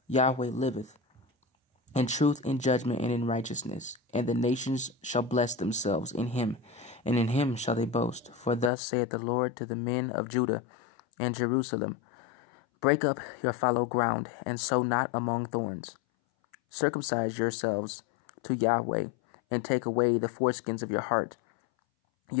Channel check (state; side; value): drops out; right; at 8.7 s